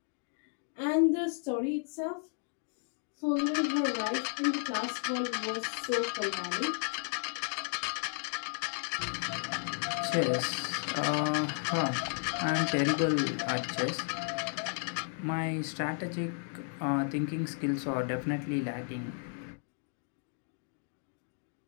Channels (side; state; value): right; silent; 55 dB below the other